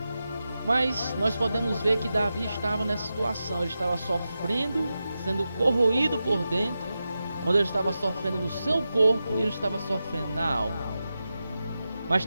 Mas nós podemos ver que Davi estava nessa situação, ele estava sofrendo, sendo corroído por dentro, onde ele estava sofrendo no seu corpo e ele estava sofrendo na alma. Mas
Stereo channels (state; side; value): inverted; both; correlation -0.91